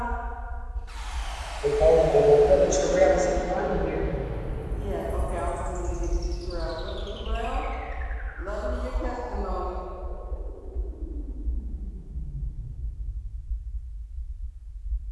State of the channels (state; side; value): identical; both; correlation 1.00